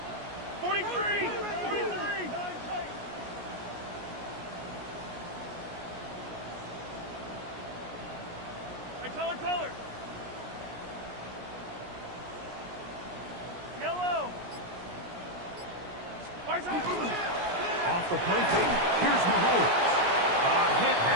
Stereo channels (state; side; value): late; left; 17 ms